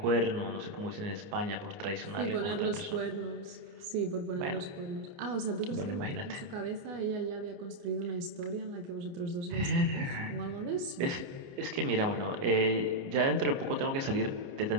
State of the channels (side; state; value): left; late; 28 ms